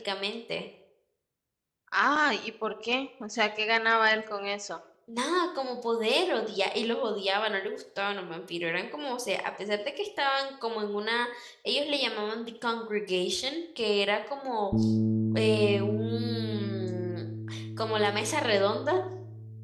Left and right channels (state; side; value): identical; both; correlation 1.00